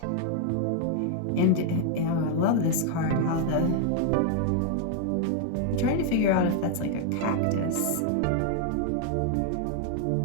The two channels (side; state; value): both; different; correlation 0.00